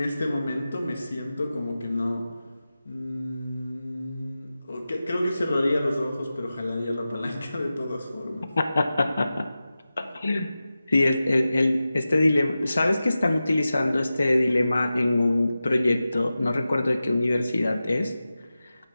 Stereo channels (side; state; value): both; inverted; correlation -0.94